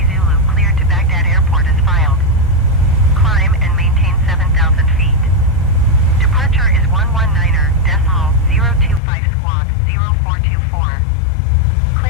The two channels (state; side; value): drops out; right; at 9.0 s